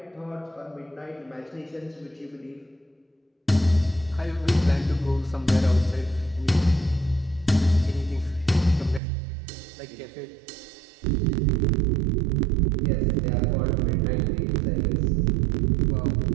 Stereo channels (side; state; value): left; drops out; at 9.0 s